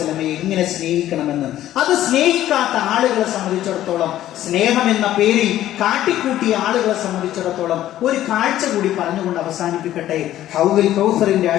എങ്ങനെ സ്നേഹിക്കണമെന്ന്. അത് സ്നേഹിക്കാത്ത ആളുകളെ സംബന്ധിച്ചിടത്തോളം, സ്നേഹം എന്ന പേരിൽ കാട്ടിക്കൂട്ടിയ ആളുകളെ സംബന്ധിച്ചിടത്തോളം ഒരു കാഴ്ച കൂടി പറഞ്ഞുകൊണ്ട് അവസാനിപ്പിക്കട്ടെ. ഹൗദുൽ കൗസറിന്റെ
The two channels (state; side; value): quieter; right; 13.1 dB